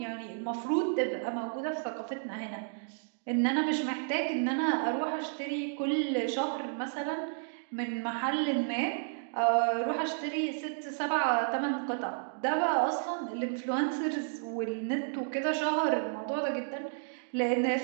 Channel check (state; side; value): silent; left; digital silence